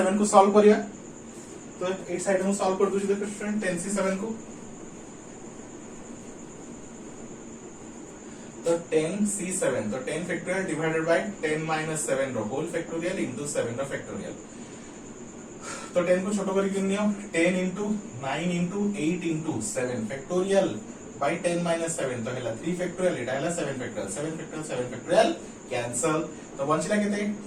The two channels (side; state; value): both; identical; correlation 1.00